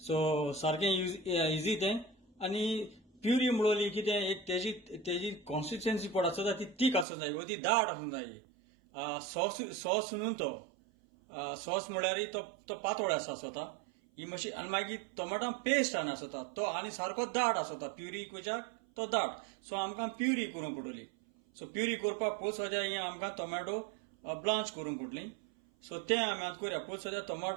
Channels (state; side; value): drops out; left; at 7.1 s